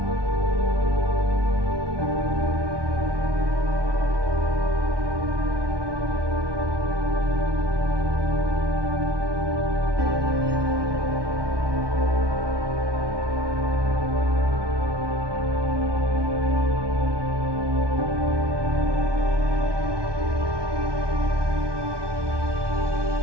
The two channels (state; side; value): late; left; 1.2 ms